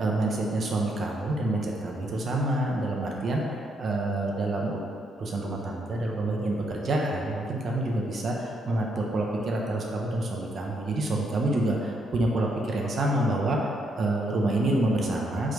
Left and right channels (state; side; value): normal; both; correlation 0.75